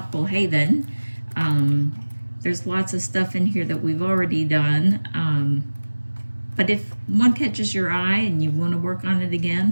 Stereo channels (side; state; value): both; inverted; correlation -1.00